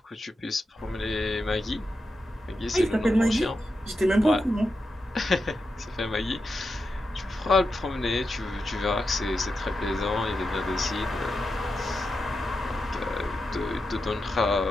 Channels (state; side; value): normal; both; correlation 0.88